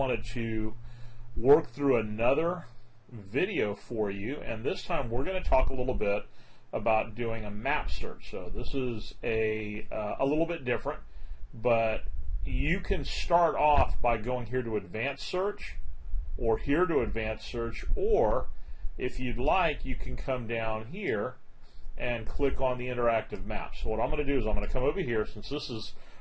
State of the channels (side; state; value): both; identical; correlation 1.00